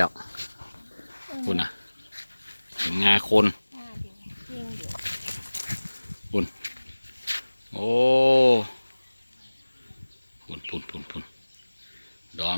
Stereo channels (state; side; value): inverted; both; correlation -1.00